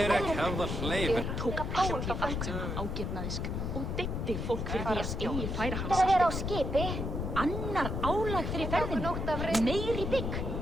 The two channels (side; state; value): left; noise; rumble, 2 dB below the sound